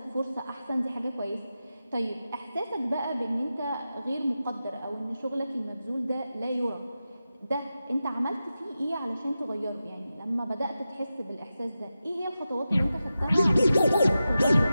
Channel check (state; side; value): inverted; both; correlation -0.92